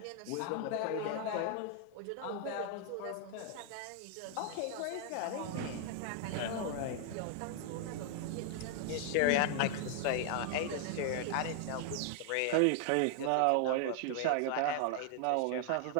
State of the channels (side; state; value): both; different; correlation 0.00